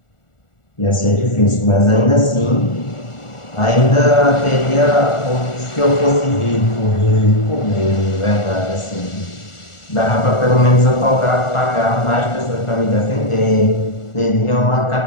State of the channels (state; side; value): late; right; 1.4 ms